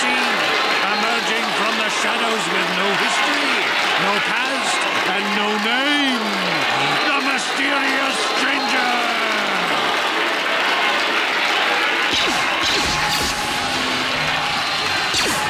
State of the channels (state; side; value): identical; both; correlation 1.00